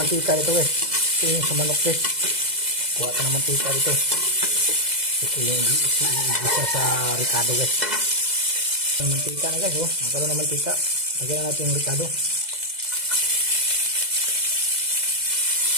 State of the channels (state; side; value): late; left; 2.0 ms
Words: dito guys. Ito yung sa manok guys. Kuha ka ng mantika dito. Ito yung isa sa ricado guys. Yung mantika na guys, oh. Magkaroon ng mantika. Lagyan na natin yung ricado.